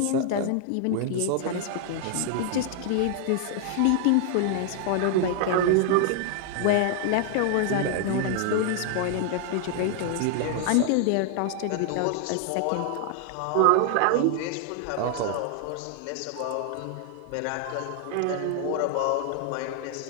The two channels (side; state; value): both; different; correlation 0.00